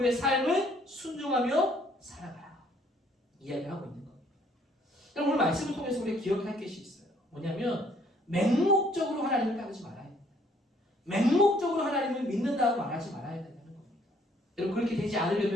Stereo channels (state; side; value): normal; both; correlation 0.63